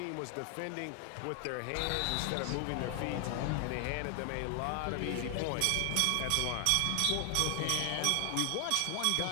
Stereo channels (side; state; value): both; different; correlation 0.00